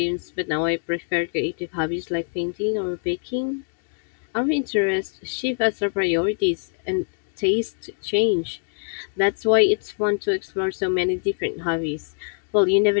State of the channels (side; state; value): right; silent; 62 dB below the other